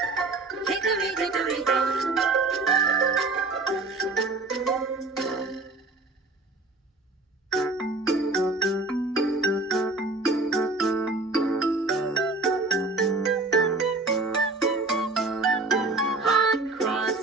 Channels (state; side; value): quieter; left; 3.4 dB